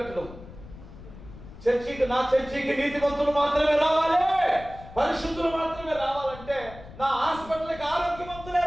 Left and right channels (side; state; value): left; noise; rumble, 16 dB below the sound